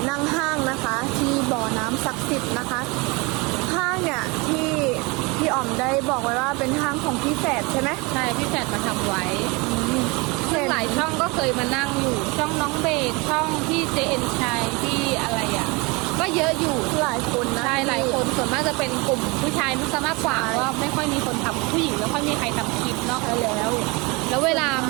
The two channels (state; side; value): quieter; left; 26.8 dB